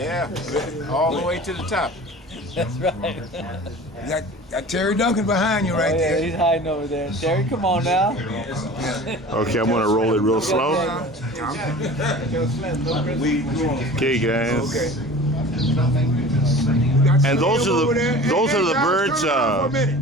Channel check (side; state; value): both; normal; correlation 0.40